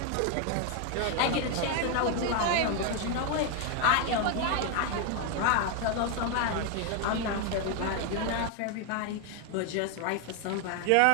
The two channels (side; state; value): both; different; correlation 0.01